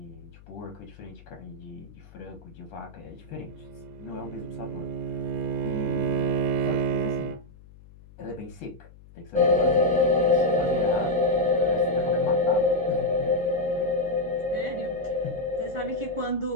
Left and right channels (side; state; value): left; noise; hum, 22 dB below the sound